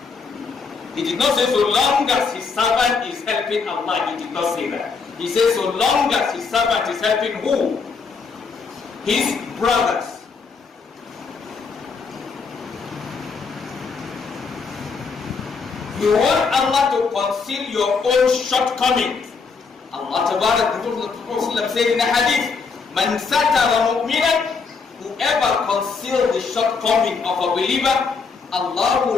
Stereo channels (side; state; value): right; quieter; 5.0 dB